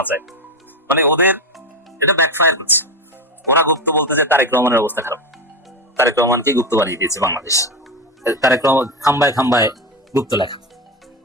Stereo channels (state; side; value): normal; both; correlation 0.16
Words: চায়। মানে ওদের এটা ব্যাকফায়ার করছে। ওরা গুপ্ত বলতে যে তারেক রহমানের অবস্থা খারাপ, তারেক রহমানকে গুপ্ত বানিয়ে দিয়েছে বাংলাদেশ, তারেক রহমান খাম্বায় খাম্বায় গুপ্ত লেখা।